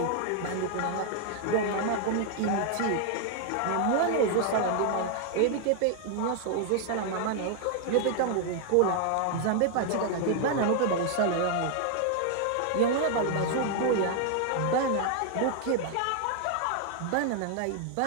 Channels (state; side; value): different; both; correlation 0.00